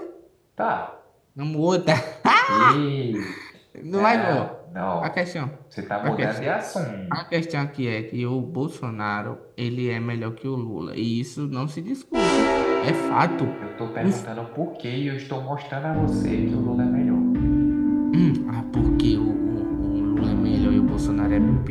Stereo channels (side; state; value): both; identical; correlation 1.00